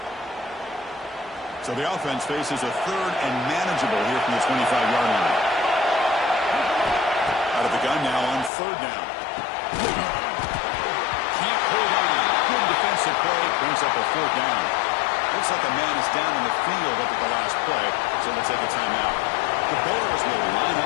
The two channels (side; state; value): right; drops out; at 8.5 s